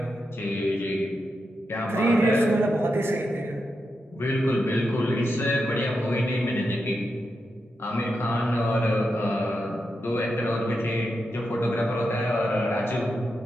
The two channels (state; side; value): normal; both; correlation 0.86